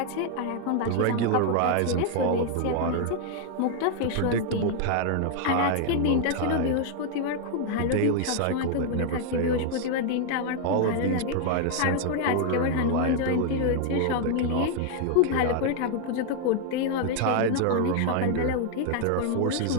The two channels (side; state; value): both; different; correlation 0.00